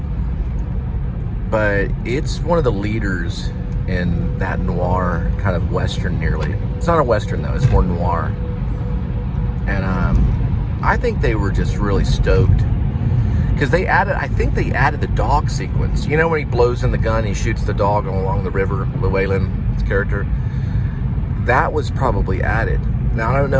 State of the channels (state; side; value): identical; both; correlation 1.00